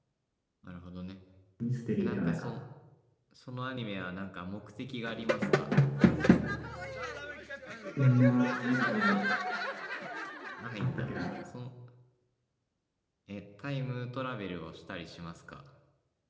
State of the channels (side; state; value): both; identical; correlation 1.00